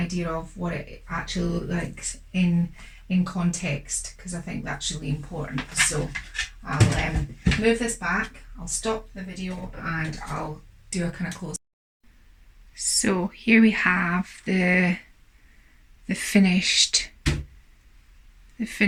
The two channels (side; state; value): both; identical; correlation 1.00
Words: of what it actually looks like in context, because I think that's really important. So I'll move this back, I'll stop the video and I'll do a kind of close. So here we have the finished